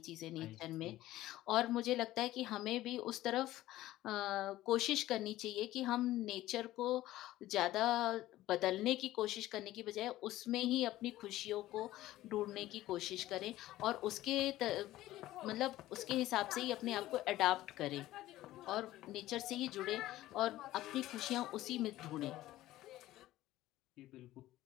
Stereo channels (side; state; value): right; quieter; 15.5 dB